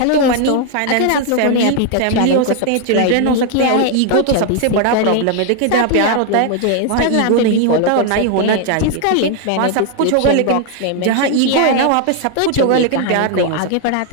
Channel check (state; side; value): different; both; correlation 0.00